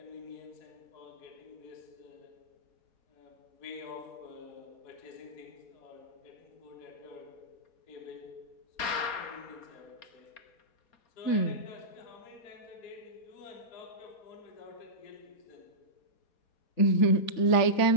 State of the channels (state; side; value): late; right; 4.3 ms